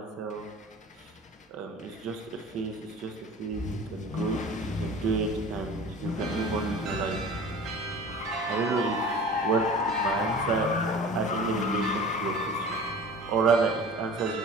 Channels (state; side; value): normal; both; correlation 0.40